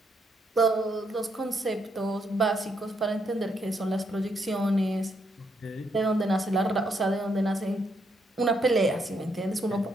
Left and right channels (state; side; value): normal; both; correlation 0.76